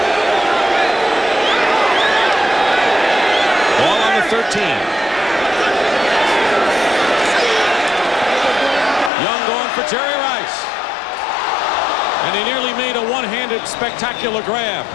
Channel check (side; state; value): right; drops out; at 9.1 s